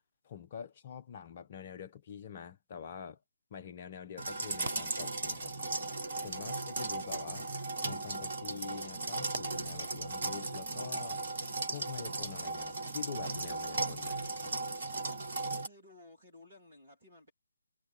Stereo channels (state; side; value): inverted; both; correlation -0.72